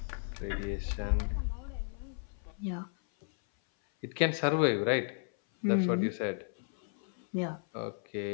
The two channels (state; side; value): silent; right; 55 dB below the other